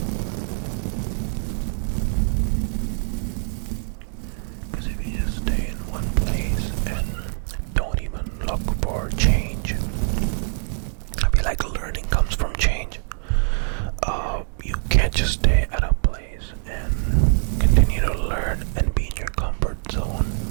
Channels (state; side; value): silent; left; digital silence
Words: Because if you just stay in one place and don't even look for change, I feel like learning comes from change. You can't just stay at a place and continue to learn and be in your comfort zone.